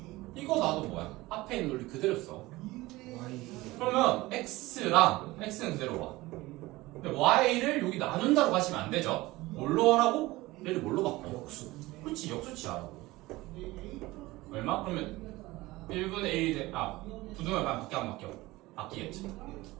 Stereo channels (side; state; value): left; quieter; 19.6 dB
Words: 이거 나도 뭐야? 앞에 있는 논리 그대로 써. 그러면 x는 그대로 와. 근데 y를 여기 나눈다고 하시면 안 되죠? 뭘로 하라고? 얘를 뭘로 바꿔? 역수. 그렇지, 역수치 하라고. 얼마? 그러면 1분의 1이 돼. 부등을 바뀌어 안 바뀌어? 바뀌겠지.